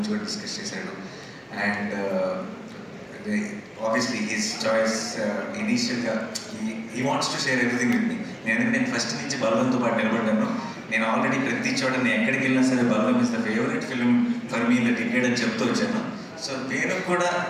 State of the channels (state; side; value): identical; both; correlation 1.00